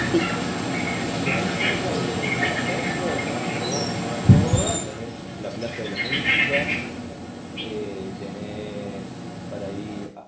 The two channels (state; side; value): identical; both; correlation 1.00